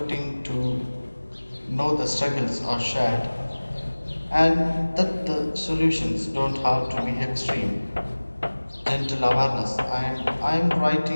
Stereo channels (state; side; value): inverted; both; correlation -1.00